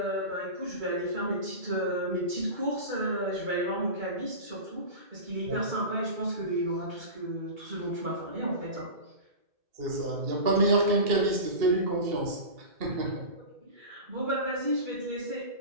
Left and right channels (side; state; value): left; late; 2.2 ms